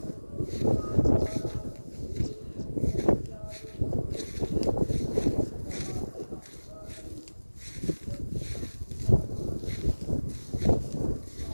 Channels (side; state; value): both; inverted; correlation -1.00